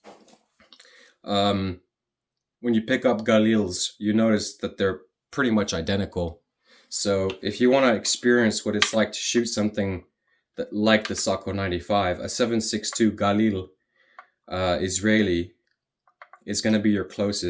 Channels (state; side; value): identical; both; correlation 1.00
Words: when you pick up Galils, you notice that they're pretty much identical. So if you want to experience what it's like to shoot something that like the Sako 95, a 7.62 Galil Israeli is going to be your